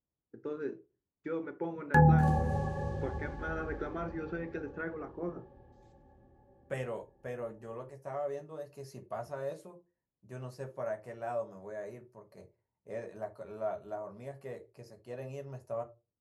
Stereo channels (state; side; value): identical; both; correlation 1.00